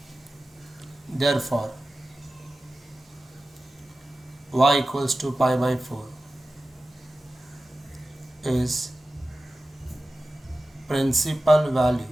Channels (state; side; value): normal; both; correlation 0.95